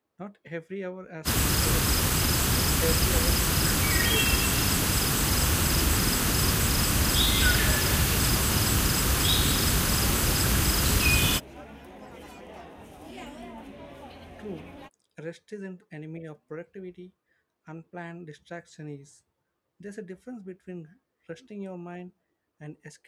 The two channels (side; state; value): both; identical; correlation 1.00